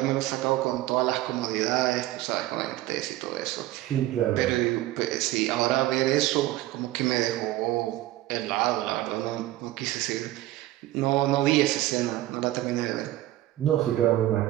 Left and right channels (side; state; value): left; quieter; 15.6 dB